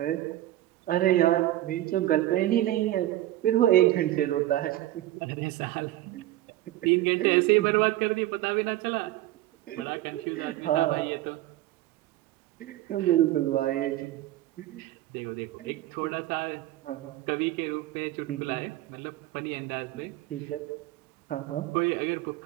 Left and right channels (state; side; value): quieter; left; 15.0 dB